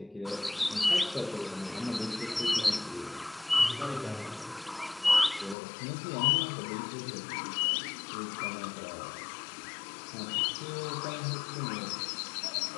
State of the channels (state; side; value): drops out; right; at 5.6 s